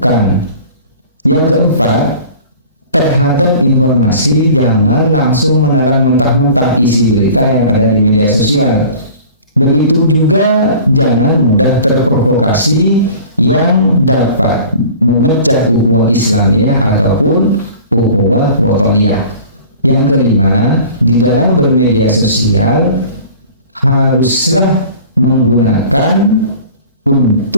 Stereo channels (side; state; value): both; inverted; correlation -0.43